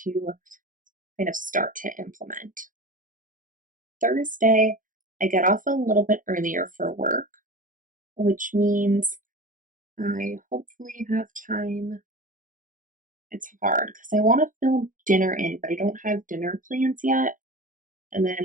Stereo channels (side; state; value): left; late; 0.39 ms